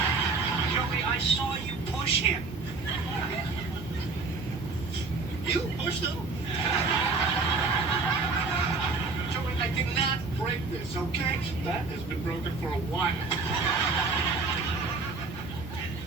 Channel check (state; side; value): quieter; left; 4.0 dB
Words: Joey, I saw you push him. You pushed him? Joey, I did not break this, okay? That has been broken for a while.